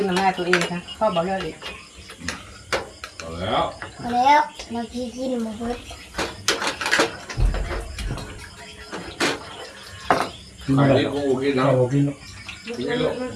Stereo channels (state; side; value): identical; both; correlation 1.00